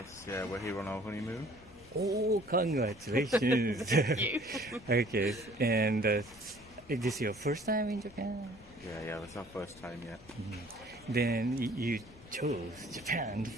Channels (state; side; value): noise; left; rumble, 23 dB below the sound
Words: yeah, we're here on our honeymoon. Oh, congratulations. Thank you. Okay, and is this your first time in Japan? Yeah, that's our first time yet. Then you chose Japan